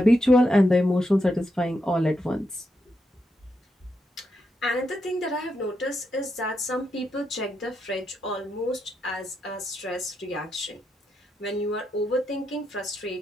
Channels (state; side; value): normal; both; correlation 0.83